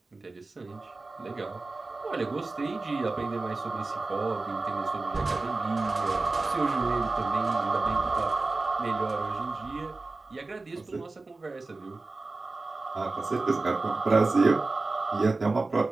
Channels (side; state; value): left; quieter; 3.5 dB